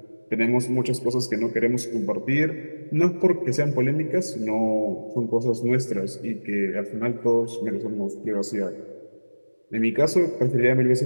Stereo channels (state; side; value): inverted; both; correlation -1.00